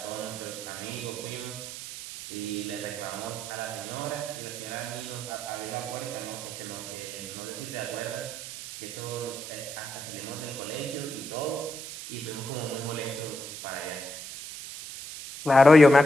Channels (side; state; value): right; noise; hiss, 10 dB below the sound